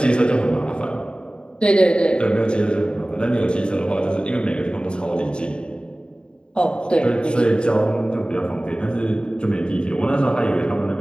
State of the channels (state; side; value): late; right; 0.051 ms